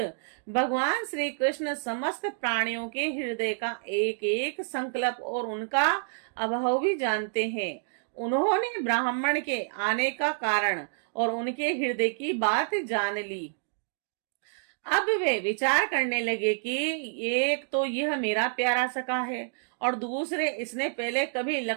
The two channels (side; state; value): left; silent; digital silence